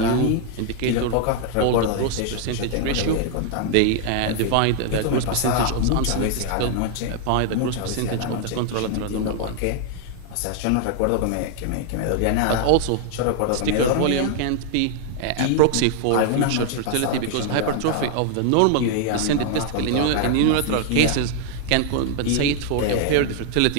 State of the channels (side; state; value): both; different; correlation 0.00